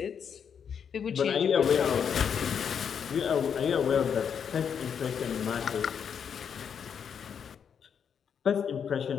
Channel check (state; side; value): quieter; right; 7.4 dB